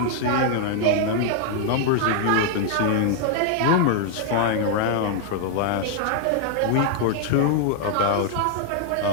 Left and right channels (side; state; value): both; different; correlation 0.00